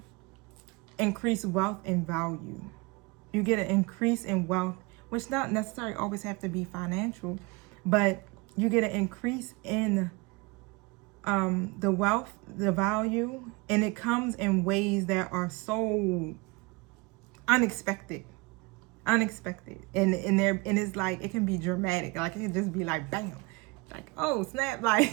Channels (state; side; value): quieter; left; 25.4 dB